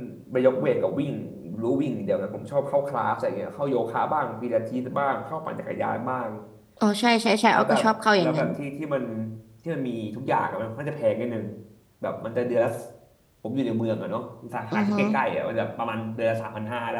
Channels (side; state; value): both; identical; correlation 1.00